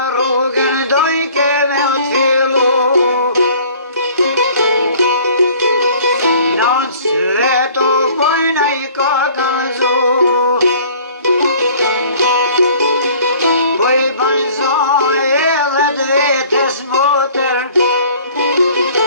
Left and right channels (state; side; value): inverted; both; correlation -0.51